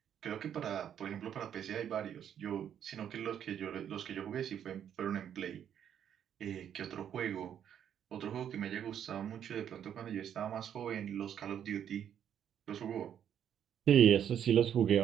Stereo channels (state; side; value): quieter; left; 9.3 dB